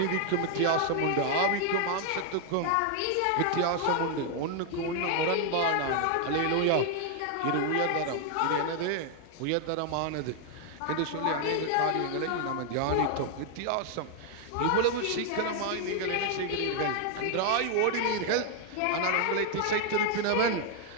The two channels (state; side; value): different; both; correlation 0.00